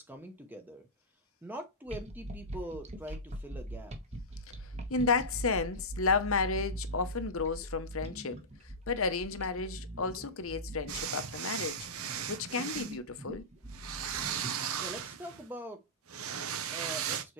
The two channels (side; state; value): both; normal; correlation -0.12